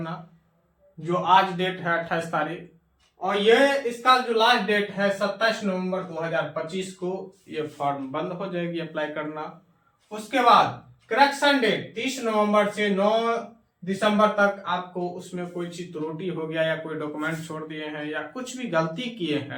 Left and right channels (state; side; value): identical; both; correlation 1.00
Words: जो आज डेट है 28 तारीख। और ये इसका जो लास्ट डेट है 27 नवंबर 2025 को ये फॉर्म बंद हो जाएगी अप्लाई करना। उसके बाद करेक्शन डेट 30 नवंबर से 9 दिसंबर तक आपको उसमें कोई चीज त्रुटि हो गया या कोई डॉक्यूमेंट छोड़ दिए हैं या कुछ भी गलती किए